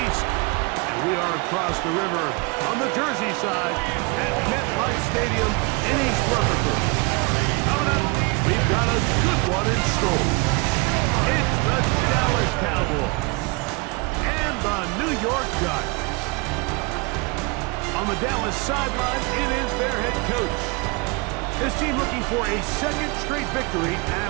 east. And we are across the river on the Jersey side at MetLife Stadium in East Rutherford. Coming up, we've got a good one in store. It's the Dallas Cowboys and the New York Giants. On the Dallas sideline, it is their head coach. His team looking for a second straight victory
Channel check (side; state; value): left; quieter; 28.7 dB